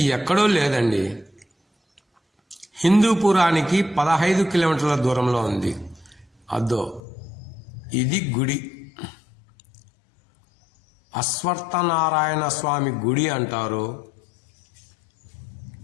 ఎక్కడో లేదండి, హిందూపురానికి 15 కిలోమీటర్ల దూరంలో ఉంది. అద్దో ఇది గుడి. అశ్వత్థనారాయణ స్వామి గుడి అంటారు,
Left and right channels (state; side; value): drops out; right; at 7.0 s